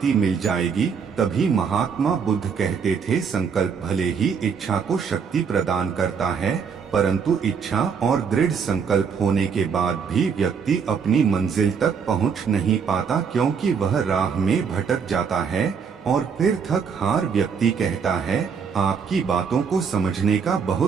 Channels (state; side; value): quieter; left; 6.3 dB